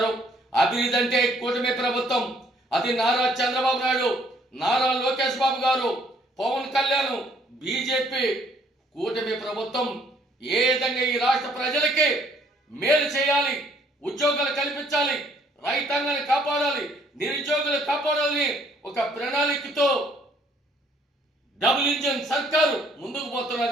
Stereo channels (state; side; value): normal; both; correlation 0.64